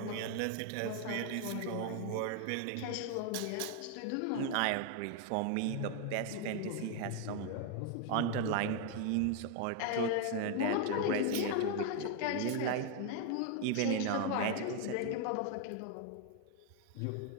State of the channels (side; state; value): both; different; correlation 0.01